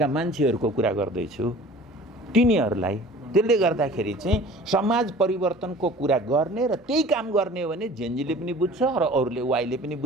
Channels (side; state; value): both; normal; correlation 0.46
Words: मान्छेहरूको कुरा गर्दैछु, तिनीहरूलाई। त्यसले गर्दाखेरि चाहिँ समाज परिवर्तनको कुरा गर्ने र त्यही काम गर्ने हो भने जेएनजीले पनि बुझ्छ र अरूले, वाइले पनि